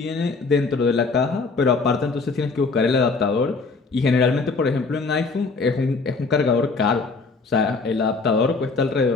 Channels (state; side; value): quieter; right; 4.1 dB